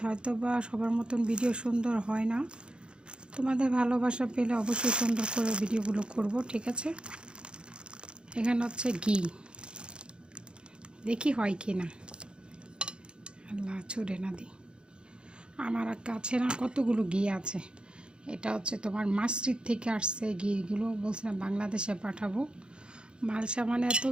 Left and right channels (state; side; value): late; left; 0.052 ms